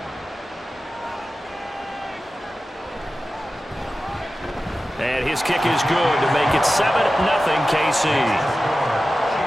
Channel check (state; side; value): normal; both; correlation 0.94